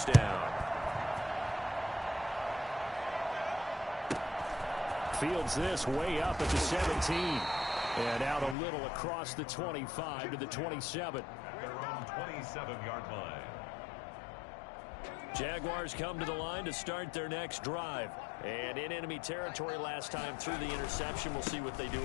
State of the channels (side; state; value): right; drops out; at 8.6 s